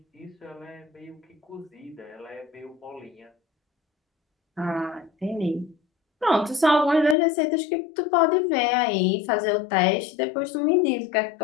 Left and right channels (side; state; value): right; drops out; at 7.2 s